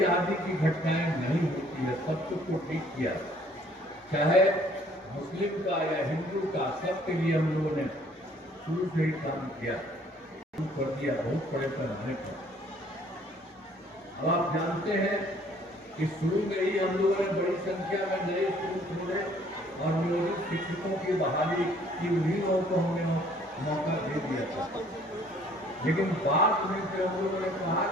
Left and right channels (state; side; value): normal; both; correlation 0.59